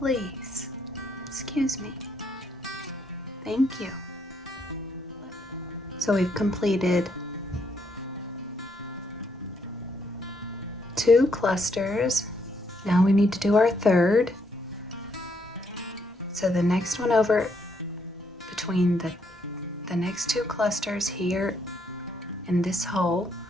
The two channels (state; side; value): normal; both; correlation 0.74